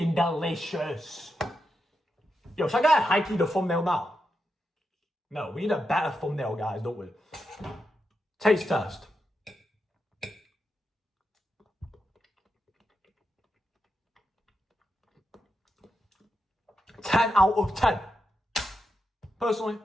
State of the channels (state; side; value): normal; both; correlation 0.86